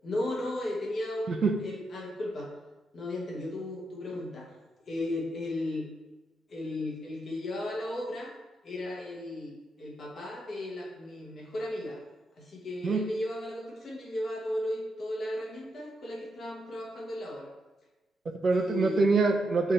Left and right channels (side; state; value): both; normal; correlation 0.82